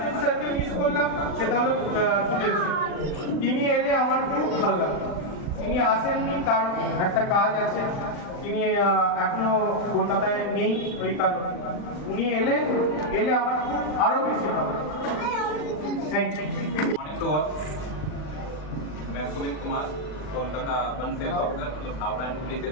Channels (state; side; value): late; right; 39 ms